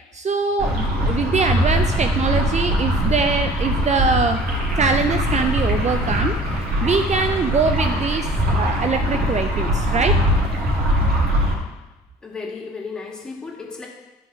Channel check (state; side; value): normal; both; correlation 0.48